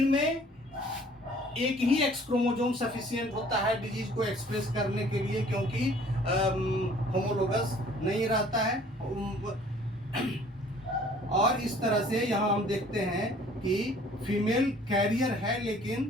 में एक ही एक्स क्रोमोसोम सफिशिएंट होता है डिजीज को एक्सप्रेस करने के लिए, क्योंकि होमोलोगस नहीं रहता है। और इस तरह से यहाँ हम देखते हैं कि फीमेल कैरियर है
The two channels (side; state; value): both; normal; correlation 0.54